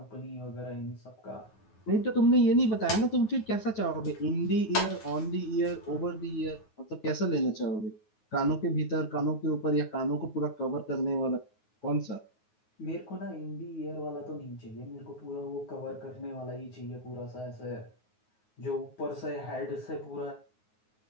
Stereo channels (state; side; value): late; right; 9.4 ms